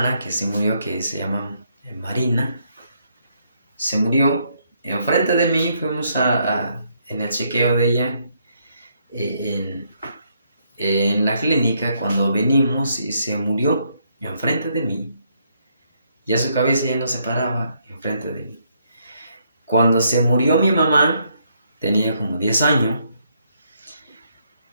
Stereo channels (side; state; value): both; inverted; correlation -0.73